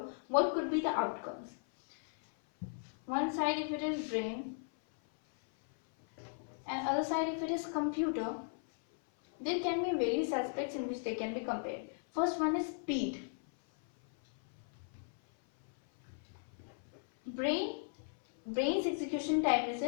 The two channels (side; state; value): right; silent; 53 dB below the other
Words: what could be the outcomes? One side if it is brain and other side if it is computer, there can be various aspects in which they can be compared. First one is speed. Brain's execution time is